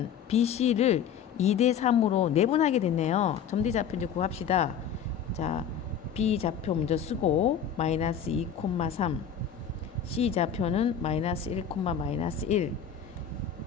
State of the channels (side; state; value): right; quieter; 7.9 dB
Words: BC를 2대 3으로 내분하게 됐네요. 점 D 좌표 이제 구합시다. 자, B 좌표 먼저 쓰고 마이너스 2,3 C 좌표는 마이너스 1, 마이너스 1